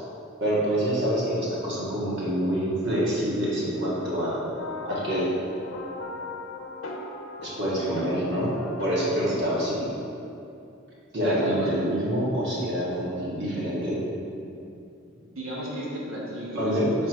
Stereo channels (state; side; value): normal; both; correlation 0.38